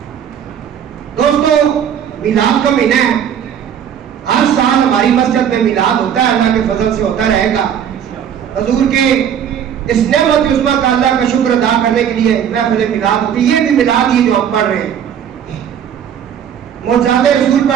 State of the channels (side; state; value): left; quieter; 8.9 dB